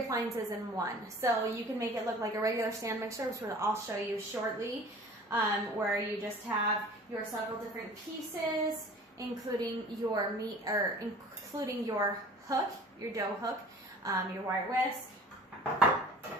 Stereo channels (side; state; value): both; normal; correlation 0.45